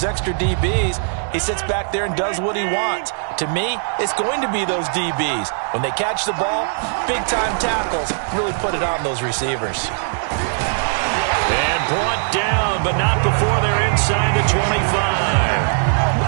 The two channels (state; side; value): silent; left; digital silence